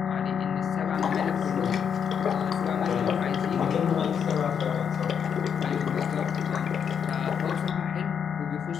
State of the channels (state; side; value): quieter; right; 7.5 dB